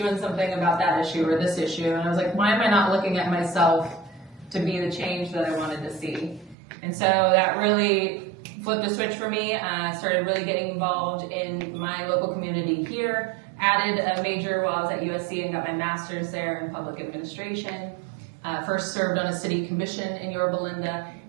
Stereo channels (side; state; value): left; drops out; at 6.6 s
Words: something about that issue or this issue? And I was like, why am I not looking at myself to be the change that I wanted to see? And so that really flipped a switch for me. I started really getting involved in my local community here, added a major while I was at USC and got my master's there in public administration. First served on a city commission in Yorba,